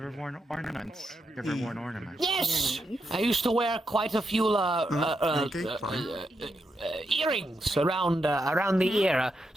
worn ornaments? You ever worn ornaments? Yes, I used to wear quite a few earrings around the ear,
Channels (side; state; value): both; normal; correlation 0.83